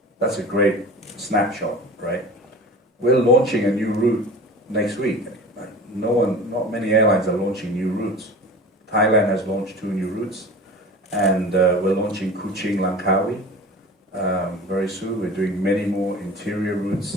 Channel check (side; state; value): both; normal; correlation 0.37